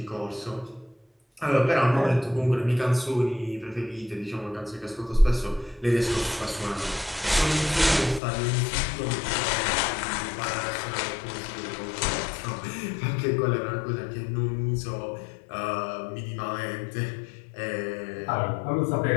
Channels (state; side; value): drops out; right; at 8.2 s